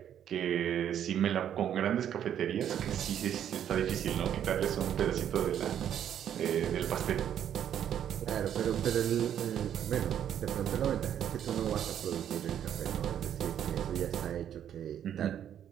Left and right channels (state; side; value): quieter; left; 9.8 dB